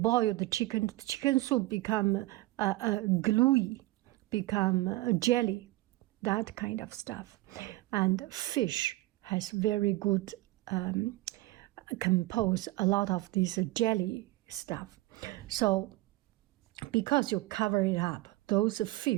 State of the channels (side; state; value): left; quieter; 18.4 dB